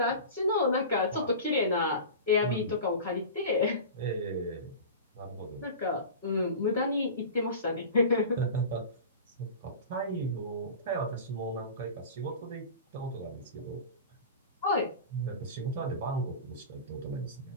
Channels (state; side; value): inverted; both; correlation -0.33